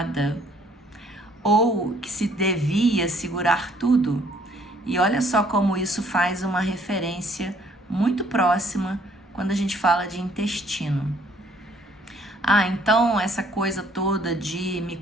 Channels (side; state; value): both; normal; correlation 0.62